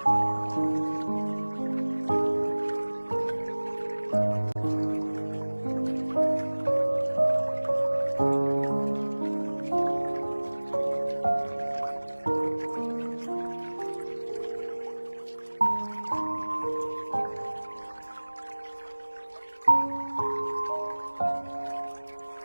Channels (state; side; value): inverted; both; correlation -1.00